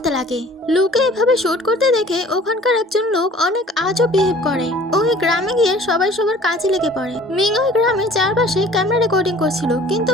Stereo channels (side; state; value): both; normal; correlation 0.50